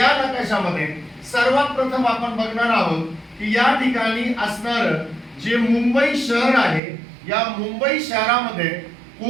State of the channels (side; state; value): left; drops out; at 6.8 s